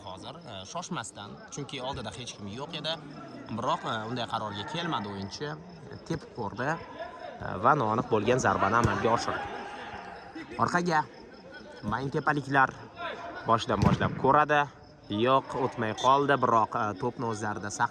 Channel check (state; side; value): identical; both; correlation 1.00